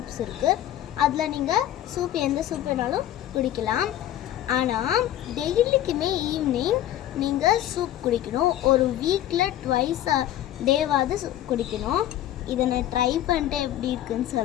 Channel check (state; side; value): quieter; right; 12.7 dB